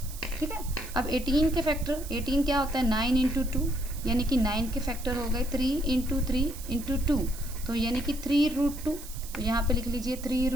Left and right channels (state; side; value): noise; right; hiss, 14 dB below the sound